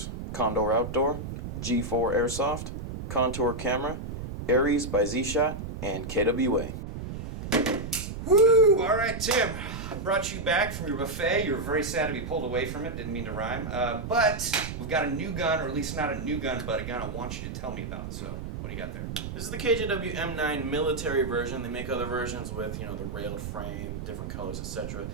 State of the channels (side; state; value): right; noise; rumble, 7 dB below the sound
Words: Condor Outdoor, G4 Airsoft, Contour Camera, Aries by Z-Shot, and KWA. Woo! All right, Tim. Brought you back from your buffet. You were very sad to be pulled away from it. Didn't mean to rhyme. But we've got a new gun, or at least not a new gun, but a gun I want you to tell me about. So, what do you got there? This is the KJW M9 military version. They make other versions with, the railed frame, different colors, etc.